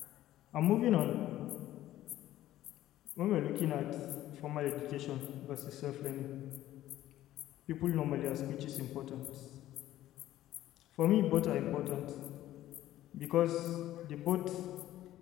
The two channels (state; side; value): quieter; right; 13.9 dB